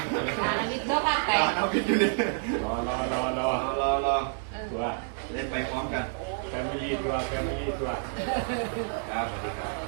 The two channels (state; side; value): silent; left; digital silence